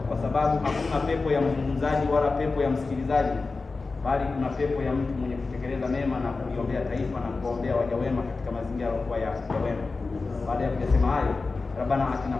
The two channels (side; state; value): right; quieter; 3.9 dB